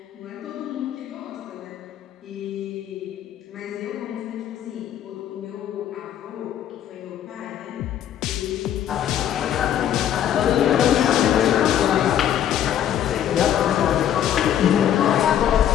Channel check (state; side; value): quieter; right; 10.4 dB